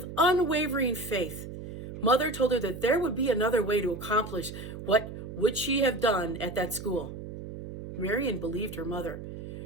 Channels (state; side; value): noise; right; hum, 10 dB below the sound